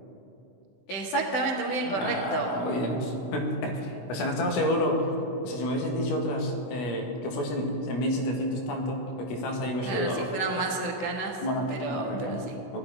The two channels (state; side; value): late; right; 16 ms